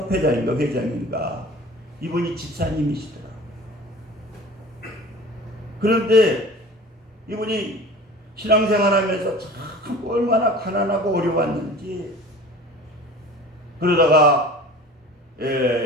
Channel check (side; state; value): both; normal; correlation 0.41